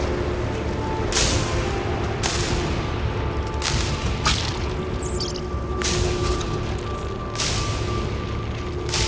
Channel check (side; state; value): both; identical; correlation 1.00